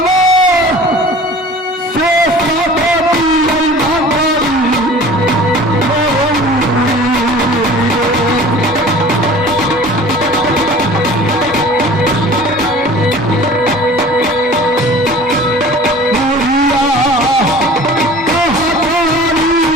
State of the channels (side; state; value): both; normal; correlation 0.44